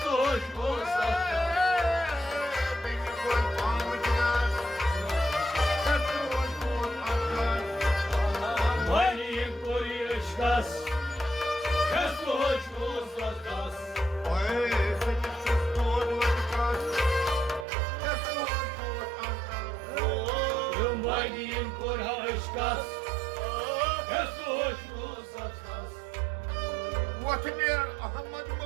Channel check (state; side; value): drops out; left; at 17.7 s